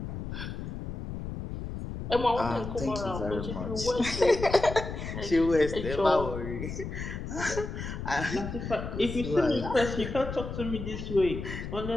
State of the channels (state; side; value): noise; left; rumble, 7 dB below the sound